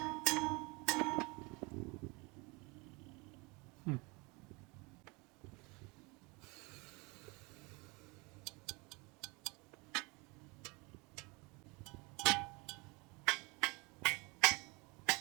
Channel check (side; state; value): left; quieter; 27.6 dB